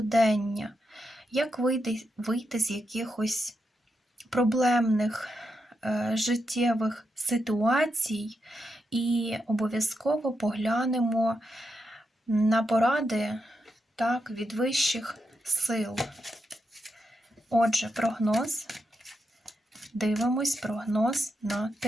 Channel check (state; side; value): normal; both; correlation 0.85